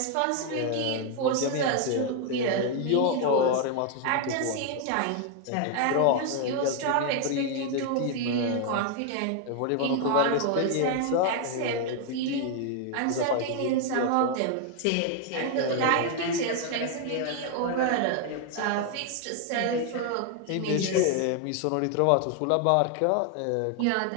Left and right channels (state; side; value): different; both; correlation 0.01